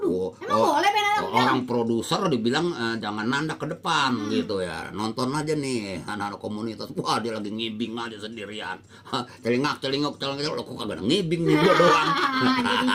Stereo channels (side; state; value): both; identical; correlation 1.00